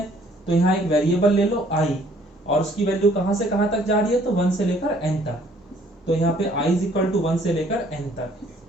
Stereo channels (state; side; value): normal; both; correlation 0.60